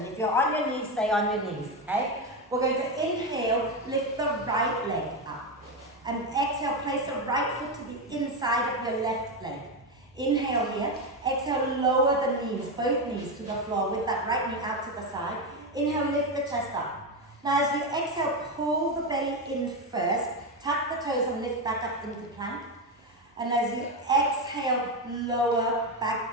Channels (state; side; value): normal; both; correlation 0.11